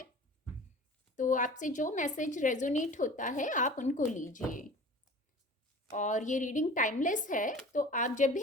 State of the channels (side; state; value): both; normal; correlation 0.41